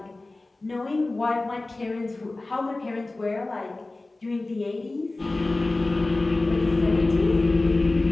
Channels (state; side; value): quieter; right; 3.1 dB